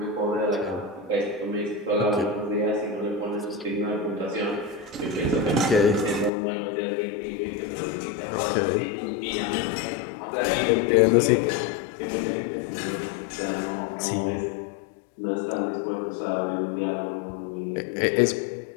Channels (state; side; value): drops out; right; at 6.3 s